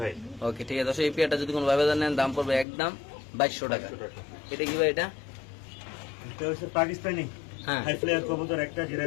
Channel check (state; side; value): drops out; right; at 2.7 s